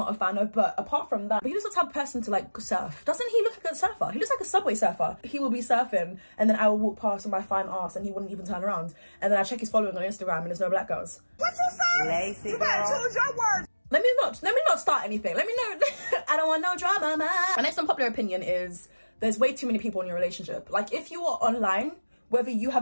a fan of. But apart from that, he looks like the type of person to like surf. Doesn't he look like a surfer? He looks like a subway surfer. He will be surfing and then I will walk past with my fine ass and he wouldn't even turn around. And then I check his following on Instagram and there's no black girls. What you say? Lazy you better choose your words. Let me not start anything. Let me know. I don't want no drama, man. My next unpopular opinion is there's way too many people in your relationship. Like if you are online, whether you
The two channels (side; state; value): both; inverted; correlation -1.00